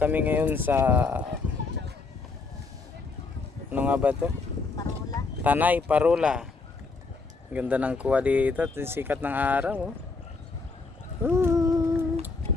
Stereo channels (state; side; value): quieter; right; 4.1 dB